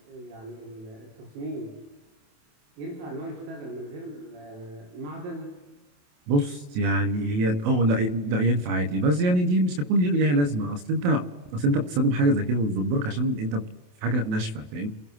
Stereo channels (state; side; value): late; left; 28 ms